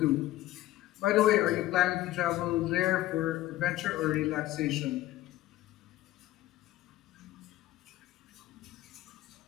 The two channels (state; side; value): quieter; right; 15.4 dB